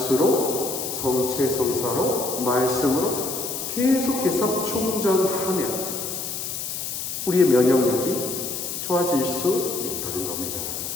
성체 성사로, 말씀으로 계속해서 충전하면 우리의 면역력이 좋아질 수 있다는 겁니다.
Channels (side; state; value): left; noise; hiss, 5 dB below the sound